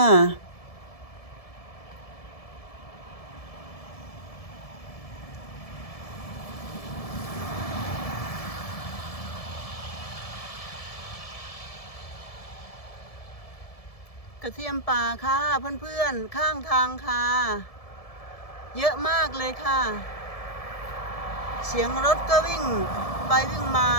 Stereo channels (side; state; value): right; late; 1.7 ms